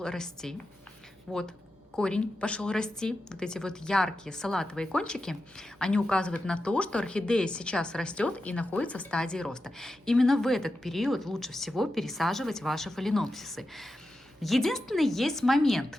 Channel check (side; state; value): both; normal; correlation 0.90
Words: расти. Вот корень пошел расти, вот эти вот яркие салатовые кончики, они указывают на то, что орхидея сейчас растет и находится в стадии роста. Именно в этот период лучше всего пересаживать ваши фаленопсисы. Единственный есть